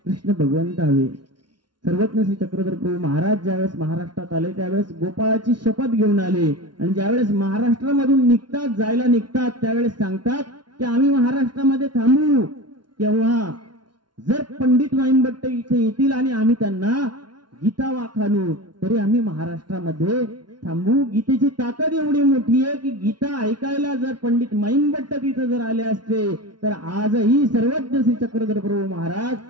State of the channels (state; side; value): late; left; 0.71 ms